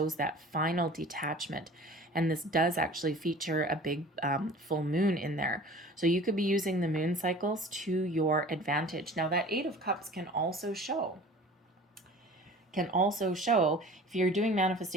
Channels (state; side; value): normal; both; correlation 0.43